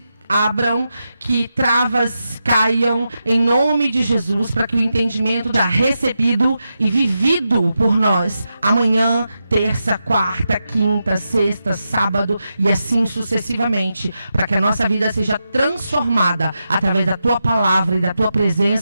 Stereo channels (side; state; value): both; inverted; correlation -0.88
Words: abram, que travas caiam em nome de Jesus, para que o entendimento da recebido e vivido por nós amanhã, terça, quarta, quinta, sexta, sábado e assim sucessivamente, para que a nossa vida seja transformada através da tua palavra e da tua